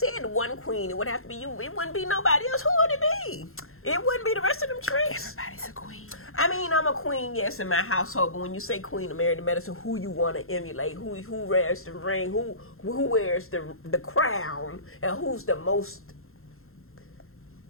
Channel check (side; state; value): right; late; 0.62 ms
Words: one queen, it would have to be you. It wouldn't be nobody else. Who would it be? It wouldn't be the rest of them tricks. Everybody's a queen. I mean, I'm a queen, yes, in my household. But when you say queen of Married to Medicine, who you want to emulate? Who wears the ring? Who wears the crown? And who's the most?